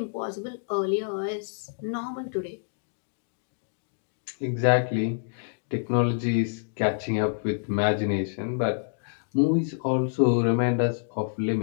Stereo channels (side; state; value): right; silent; digital silence